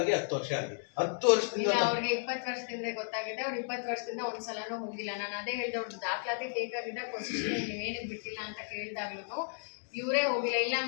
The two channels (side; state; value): right; silent; digital silence